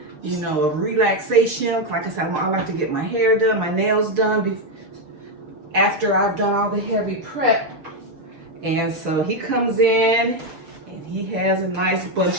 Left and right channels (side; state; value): left; late; 6.6 ms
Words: of relaxation. Like I said, I like to get my hair done, my nails done after I've done all the heavy prep. And so he comes in and he has a nice